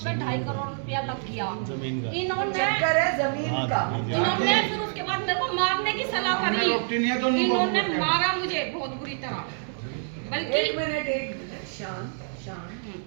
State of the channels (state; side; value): silent; left; 60 dB below the other